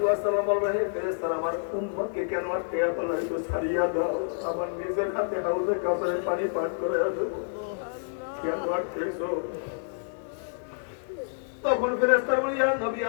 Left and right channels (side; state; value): right; silent; digital silence